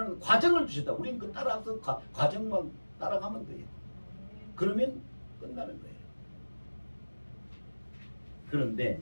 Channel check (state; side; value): inverted; both; correlation -1.00